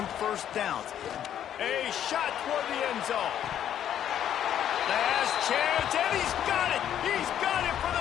first downs. A shot toward the end zone. Last chance, and he's got it. He's got it for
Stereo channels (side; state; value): right; quieter; 10.3 dB